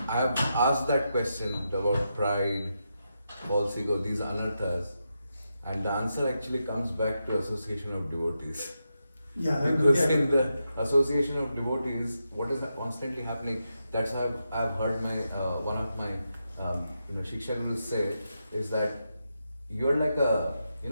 I have asked that question about pride, false ego, these anarthas, and the answer actually comes back to association of devotees. Yeah, Because in the association of devotees, what is constantly happening? That's how I've heard my one of my Shiksha Gurus say is that you're like a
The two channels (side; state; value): both; inverted; correlation -0.86